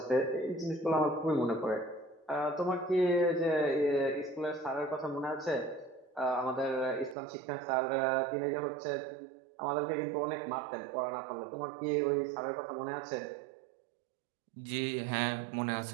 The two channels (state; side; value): drops out; left; at 7.2 s